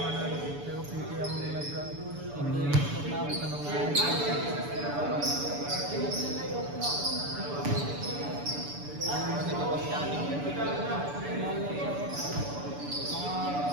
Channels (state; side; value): late; left; 6.9 ms